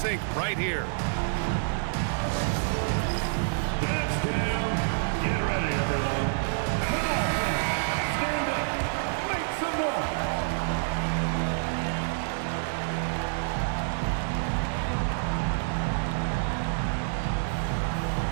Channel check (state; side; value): silent; left; digital silence